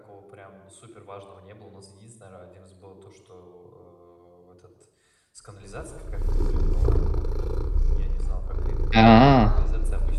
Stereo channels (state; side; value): identical; both; correlation 1.00